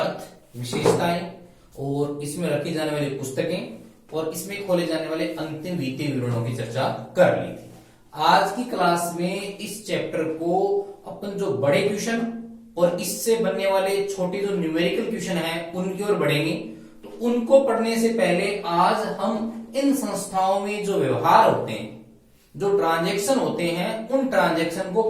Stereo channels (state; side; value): identical; both; correlation 1.00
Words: अर्थ, विशेषताएं और इसमें रखी जाने वाली पुस्तकें और इसमें खोले जाने वाले अंतिम वित्तीय विवरणों की चर्चा कर ली थी। आज की क्लास में इस चैप्टर को अपन जो बड़े क्वेश्चन और इससे बनने वाले छोटे जो न्यूमेरिकल क्वेश्चन हैं उनकी ओर बढ़ेंगे। तो उनको पढ़ने से पहले आज हम इन संस्थाओं में जो व्यवहार होते हैं, जो ट्रांजैक्शन होते हैं, उन ट्रांजैक्शन को